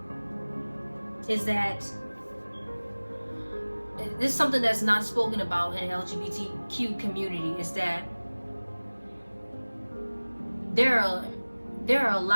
is that this is something that's not spoken about in the LGBTQ community, is that there are a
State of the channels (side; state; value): both; inverted; correlation -1.00